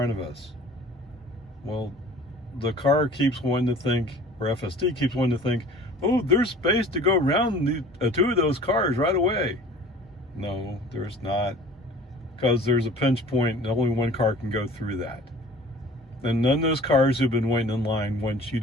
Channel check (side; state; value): both; normal; correlation 0.46